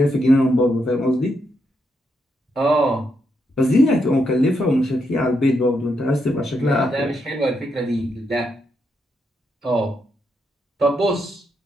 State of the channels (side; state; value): both; normal; correlation 0.80